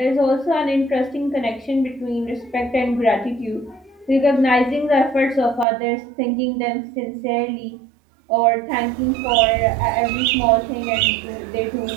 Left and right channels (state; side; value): drops out; left; at 5.7 s